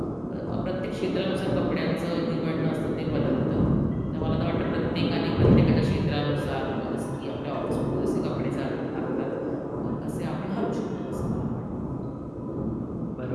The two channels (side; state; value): both; identical; correlation 1.00